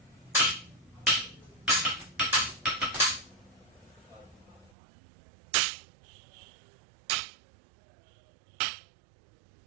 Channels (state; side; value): drops out; left; at 4.7 s